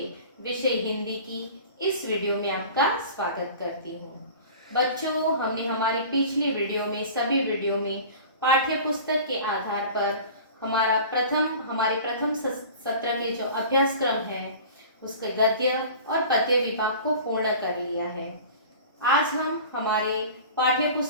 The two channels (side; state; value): both; inverted; correlation -0.40